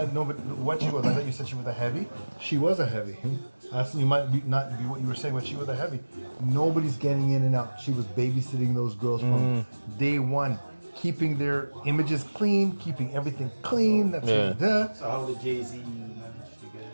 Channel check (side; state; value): both; inverted; correlation -1.00